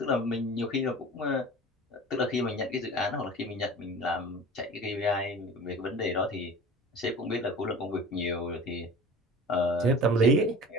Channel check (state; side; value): normal; both; correlation 0.39